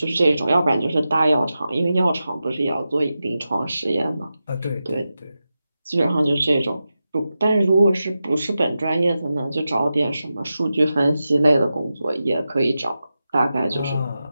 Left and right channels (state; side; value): inverted; both; correlation -0.92